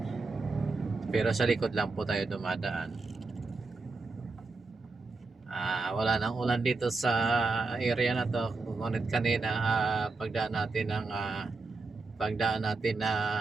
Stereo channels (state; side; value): quieter; left; 3.8 dB